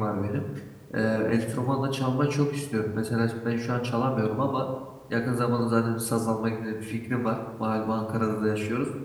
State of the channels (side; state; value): both; identical; correlation 1.00